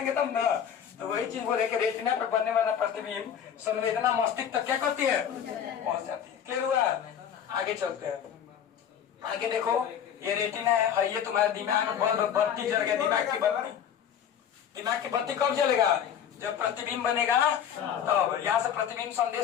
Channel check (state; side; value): quieter; right; 8.8 dB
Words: तब ना। तो वही चीज बोले कि रेटिना पर बनने वाला प्रतिबिंब संवेदना मस्तिष्क तक क्या करती है, पहुंच जाती है। क्लियर हुआ, आगे चलते हैं। आगे देखो, ये रेटिना है, ये तुम्हारे दिमाग में बत्ती जल गया, दिमाग की बत्ती कब जलेगा, जब प्रतिबिंब बनेगा, तब यहाँ से प्रतिबिंब